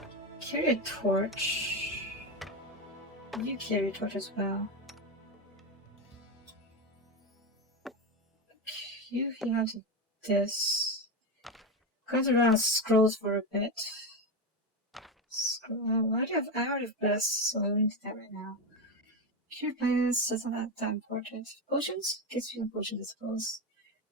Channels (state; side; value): normal; both; correlation 0.15